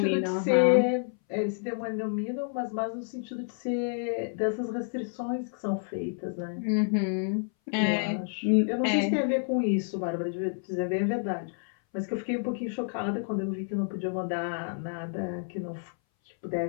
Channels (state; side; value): silent; right; 58 dB below the other